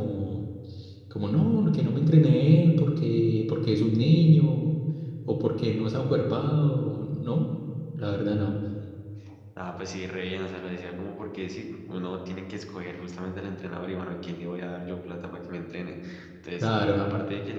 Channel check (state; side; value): identical; both; correlation 1.00